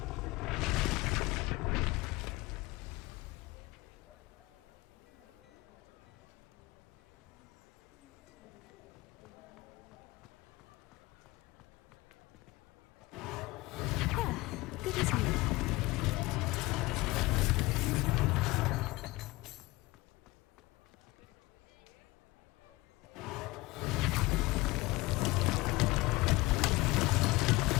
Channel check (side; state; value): right; quieter; 21.6 dB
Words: Good as new.